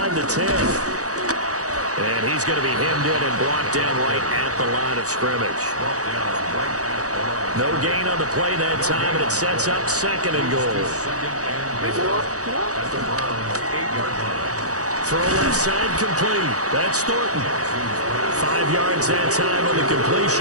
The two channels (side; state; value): left; late; 0.66 ms